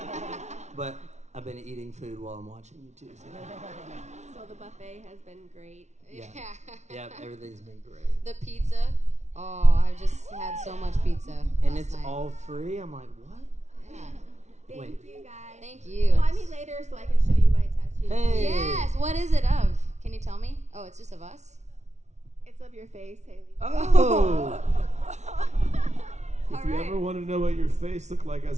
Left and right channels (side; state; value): left; late; 0.33 ms